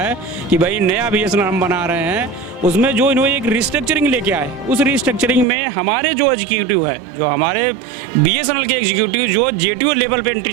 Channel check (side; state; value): left; drops out; at 5.5 s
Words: कि भाई नया BSNL हम बना रहे हैं, उसमें जो इन्होंने एक रिस्ट्रक्चरिंग लेके आए, उस रिस्ट्रक्चरिंग में हमारे जो एग्जीक्यूटिव है, जो हमारे BSNL के एग्जीक्यूटिव जो JTO लेवल पे